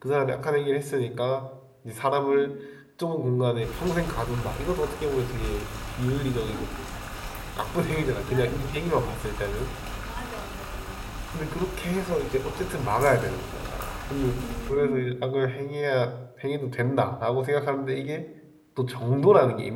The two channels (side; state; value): both; identical; correlation 1.00